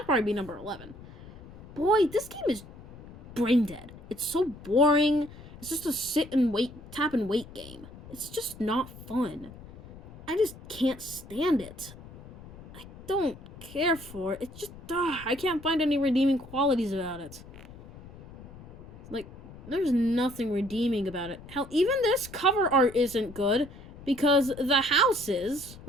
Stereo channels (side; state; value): left; noise; rumble, 18 dB below the sound